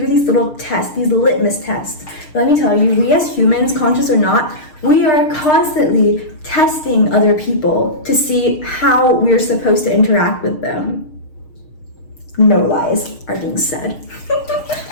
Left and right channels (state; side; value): late; right; 6.5 ms